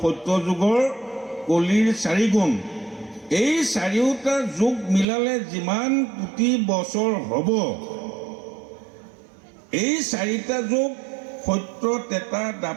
সত্য যুগৰ কলিৰ 4 গুণ। এই চাৰিওটা যুগ মিলালে যিমান কোটি বছৰ হ'ব, এই 4টা যুগ সত্য, ত্ৰেতা,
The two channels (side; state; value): left; drops out; at 5.1 s